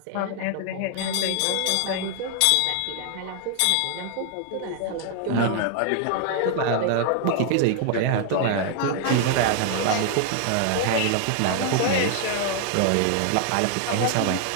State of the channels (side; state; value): both; different; correlation 0.00